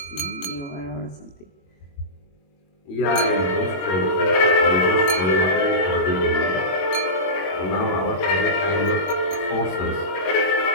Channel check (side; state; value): right; late; 21 ms